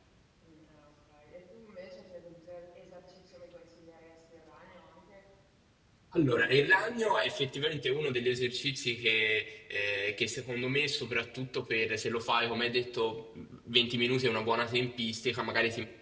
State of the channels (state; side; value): identical; both; correlation 1.00